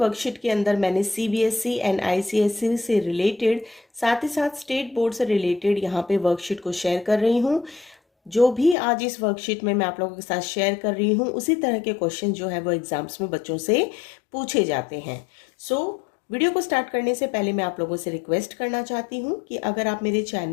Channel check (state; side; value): drops out; right; at 8.8 s